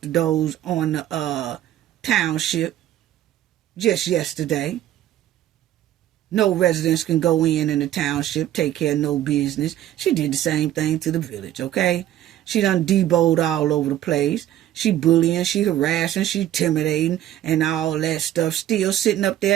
the doors on the township just yesterday. No residents can go in the township, take care of no business. She did the same thing to the village, okay? She done deboed all over the place. She bullying, she harassing, she intimidating, and all that stuff. Still sitting up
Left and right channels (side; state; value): left; quieter; 12.6 dB